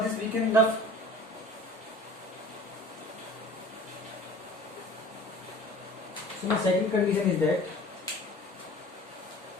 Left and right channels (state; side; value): normal; both; correlation 0.44